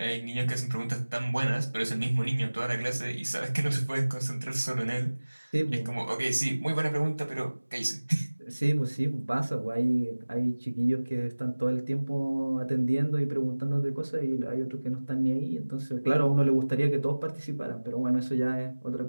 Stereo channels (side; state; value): both; inverted; correlation -1.00